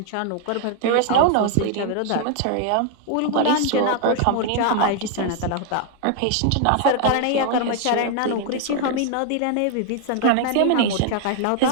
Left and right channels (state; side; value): different; both; correlation 0.00